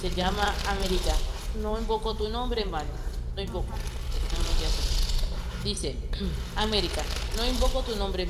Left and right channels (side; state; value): both; identical; correlation 1.00